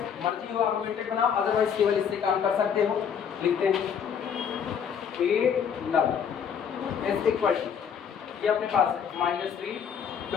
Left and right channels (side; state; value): right; quieter; 7.5 dB